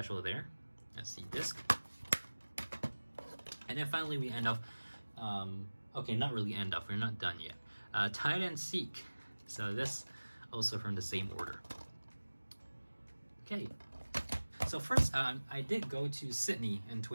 there. That's the disc. And then finally we end off, okay, not really end off, we're not done yet. Hide and Seek. So this also from the same order. Okay. So first, I did go to Sydney in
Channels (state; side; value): inverted; both; correlation -1.00